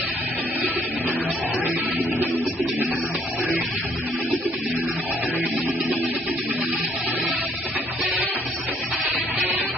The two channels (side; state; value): both; normal; correlation 0.65